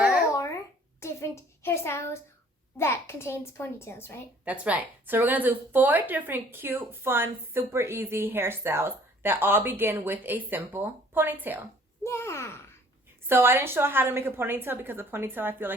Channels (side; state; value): both; normal; correlation 0.56